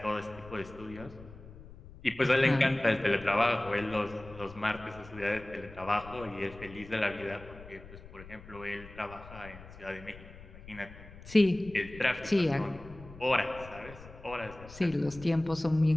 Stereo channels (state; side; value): noise; left; rumble, 17 dB below the sound